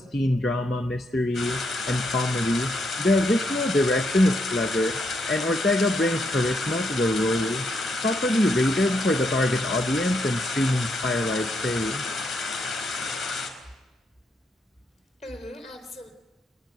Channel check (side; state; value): both; normal; correlation 0.78